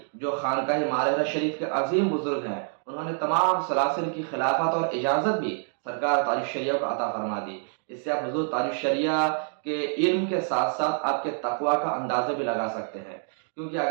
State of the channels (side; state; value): left; silent; 56 dB below the other